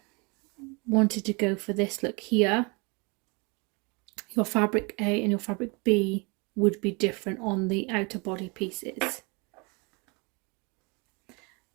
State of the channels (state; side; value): quieter; left; 29.8 dB